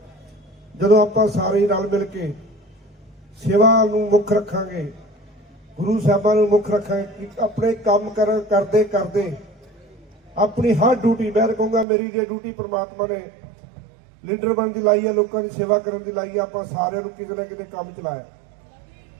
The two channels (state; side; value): drops out; left; at 11.9 s